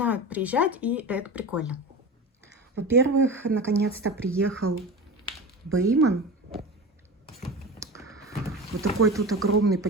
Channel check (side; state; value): both; normal; correlation 0.29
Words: приезжать, и это прикольно. Во-первых, наконец-то приехал Бейман. Вот такой тут огромный